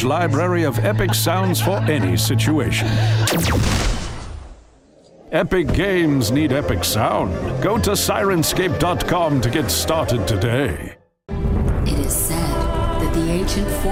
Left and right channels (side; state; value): both; identical; correlation 1.00